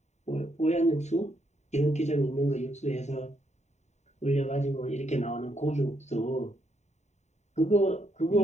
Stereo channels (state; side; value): late; right; 0.33 ms